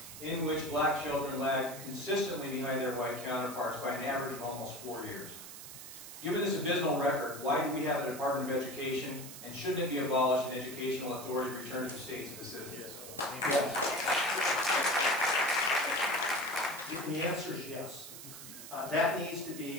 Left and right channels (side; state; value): right; noise; hiss, 12 dB below the sound